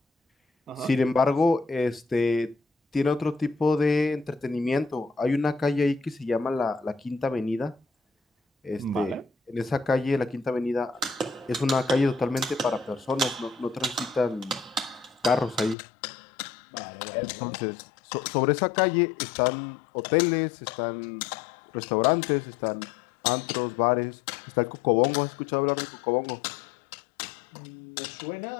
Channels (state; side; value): drops out; right; at 15.8 s